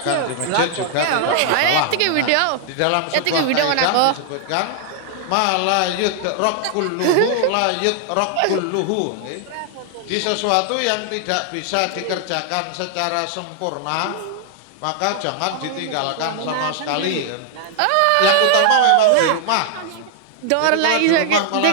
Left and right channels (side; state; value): both; different; correlation 0.00